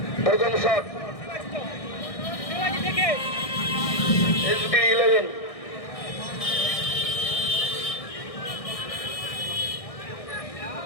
প্রথম শট SB11।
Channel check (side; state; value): right; late; 1.6 ms